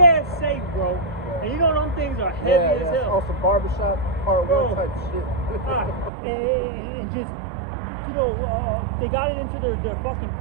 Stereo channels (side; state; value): left; drops out; at 6.1 s